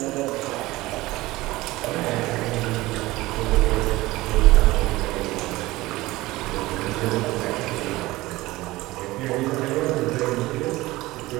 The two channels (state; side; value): quieter; left; 19.1 dB